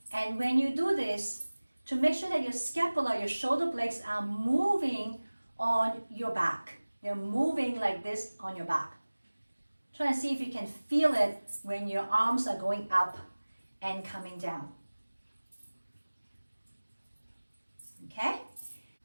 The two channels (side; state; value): both; inverted; correlation -1.00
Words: And when you do this, to make sure that your scapula, your shoulder blades are moving on your back. They're moving like this on your back. Try and see if you can feel it when your arms are going up and coming down. Okay?